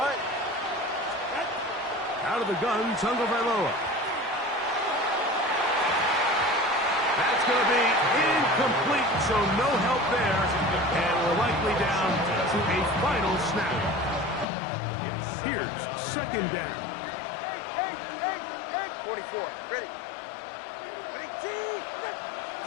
Out of the gun, Tagovailoa. That's going to be incomplete, so no help there, and we're likely down to a final snap. Here's 2nd down. 44. Ready.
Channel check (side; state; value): right; drops out; at 14.5 s